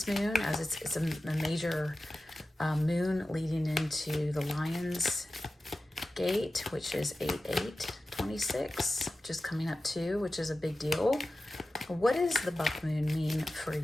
moon, as it's a major moon leading into the Lion's Gate, which is 8/8/26, which is coming up too, which is a big deal. What does the buck moon mean for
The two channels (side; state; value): both; normal; correlation 0.94